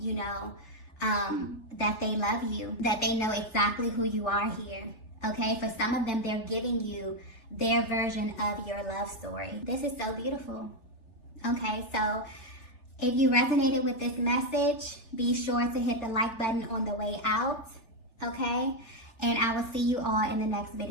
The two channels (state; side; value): late; right; 3.4 ms